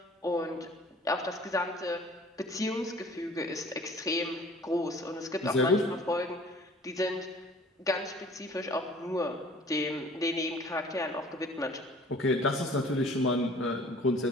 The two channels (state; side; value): normal; both; correlation 0.50